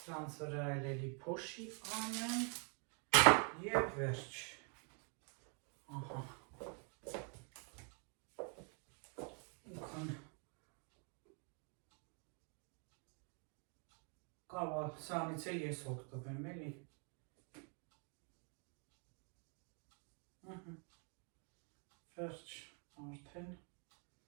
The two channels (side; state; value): left; quieter; 39.2 dB